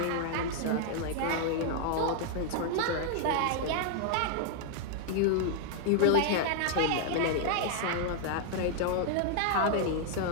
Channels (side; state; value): both; different; correlation 0.00